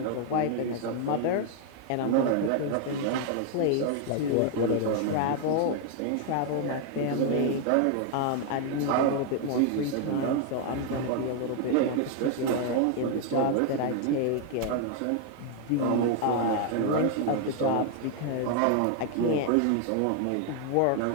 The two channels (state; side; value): different; both; correlation 0.00